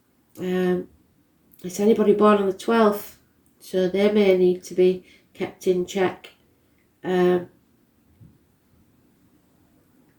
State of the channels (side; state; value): both; identical; correlation 1.00